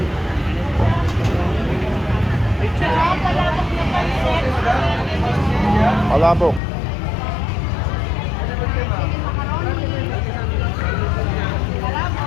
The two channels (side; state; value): right; drops out; at 6.6 s